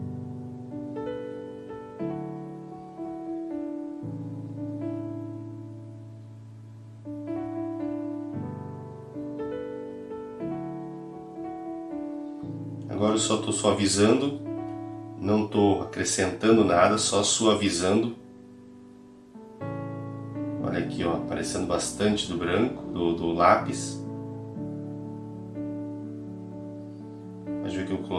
Agora eu só estou suavizando, não estou acrescentando nada, só suavizando. Olha aqui, ó, aparecendo bastante do branco, do lápis. Mas viu que eu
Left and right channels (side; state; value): both; identical; correlation 1.00